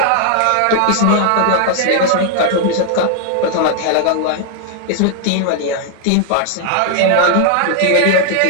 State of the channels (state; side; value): different; both; correlation 0.00